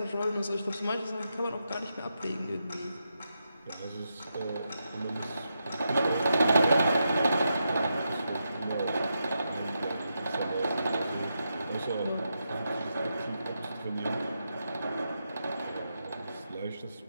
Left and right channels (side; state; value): both; inverted; correlation -0.85